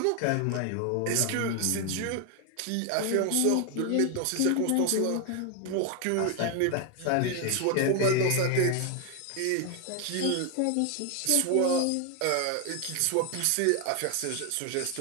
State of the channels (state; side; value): different; both; correlation 0.01